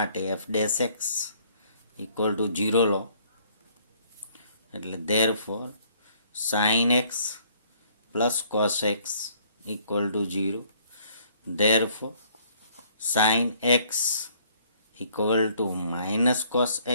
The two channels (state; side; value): inverted; both; correlation -0.62